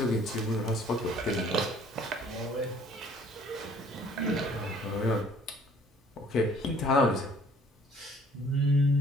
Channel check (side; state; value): both; normal; correlation 0.57